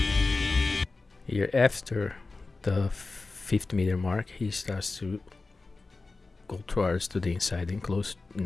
Here after the 50-meter mark, he starts to go towards to the inside and close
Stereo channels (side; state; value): right; quieter; 3.7 dB